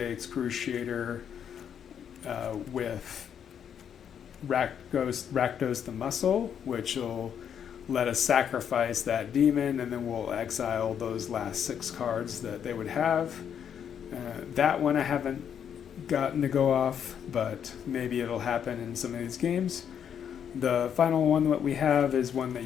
Excruciator with Rakdos the Muscle, which will let us sacrifice that demon, and then we'll exile those last 6 cards that they would have. That one I haven't gotten to go off, but maybe it'll happen in some of these games. The final one that we have is one that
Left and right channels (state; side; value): quieter; right; 8.4 dB